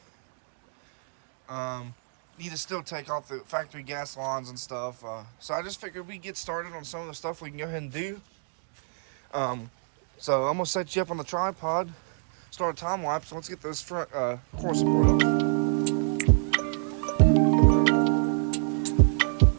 Need to still take off the factory gas lines and stuff. So I just figured we'd get started on some of the stuff we can go ahead and do. So I'm going to set you up on the tripod. Start a time lapse. Let's get this front core support up.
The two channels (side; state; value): left; silent; digital silence